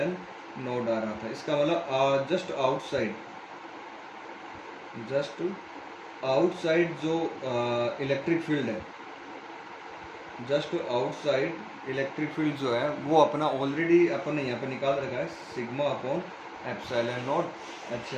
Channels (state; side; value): identical; both; correlation 1.00